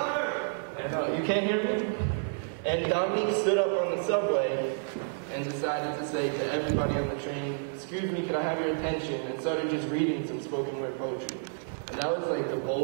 And, you can't hear me? And Dominique stood up on the subway and decided to say to everybody on the train, "Excuse me, can I have your attention?" and started just reading some spoken word poetry. And that was like the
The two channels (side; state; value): left; silent; digital silence